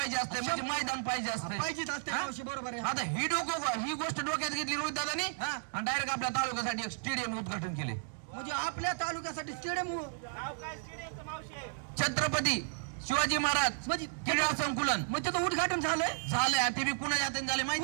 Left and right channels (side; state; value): left; silent; digital silence